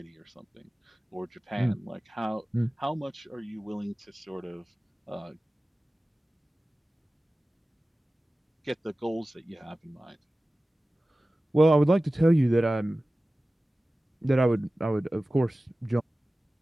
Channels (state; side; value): normal; both; correlation 0.96